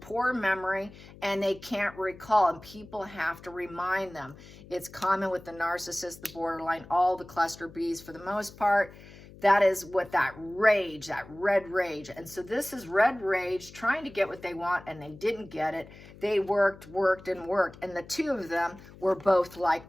poor memory, and they can't recall. And people have to remind them. It's common with the narcissist, the borderline, all the cluster Bs for the most part. That is what that rage, that red rage. And so this is red rage trying to get what they want, and they didn't get it. They worked. And the two of them were both like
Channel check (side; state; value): left; noise; hum, 19 dB below the sound